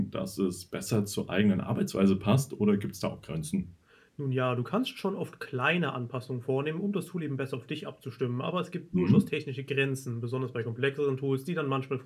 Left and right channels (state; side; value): identical; both; correlation 1.00